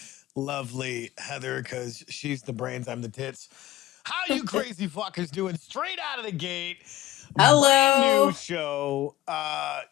lovely Heather, because she's the brains, I'm the tits. How you crazy fuckers doing? Straight out of the gate. Brand new Hello. show.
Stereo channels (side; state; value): right; quieter; 15.2 dB